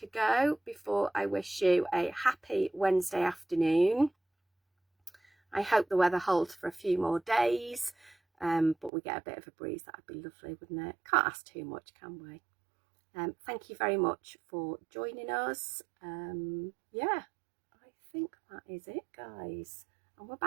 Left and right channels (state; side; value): drops out; left; at 8.9 s